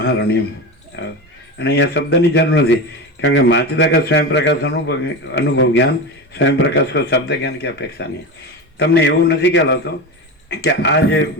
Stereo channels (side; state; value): both; normal; correlation 0.23